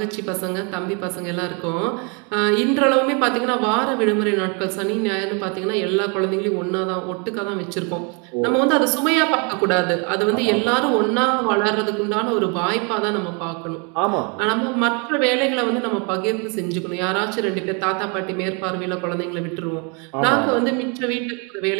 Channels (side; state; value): left; quieter; 34.1 dB